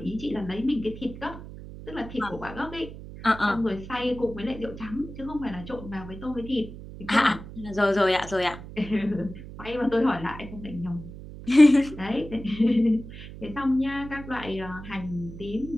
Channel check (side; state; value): right; noise; hum, 13 dB below the sound